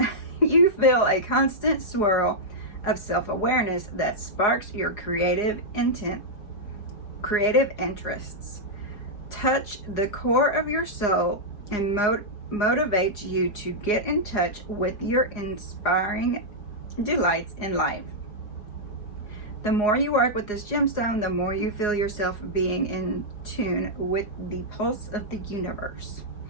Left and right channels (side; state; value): right; late; 4.9 ms